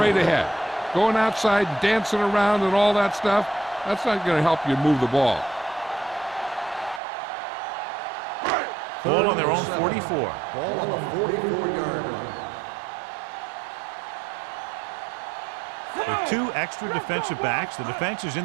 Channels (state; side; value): drops out; left; at 7.0 s